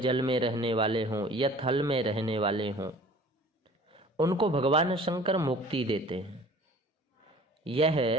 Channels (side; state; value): both; normal; correlation 0.47